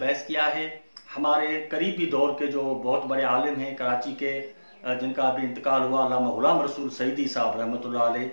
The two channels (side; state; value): both; inverted; correlation -1.00